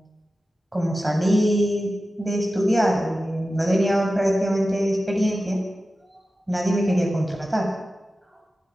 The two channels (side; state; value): both; normal; correlation 0.94